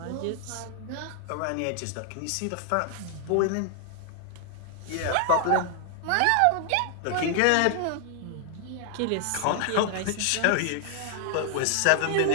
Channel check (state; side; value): different; both; correlation 0.00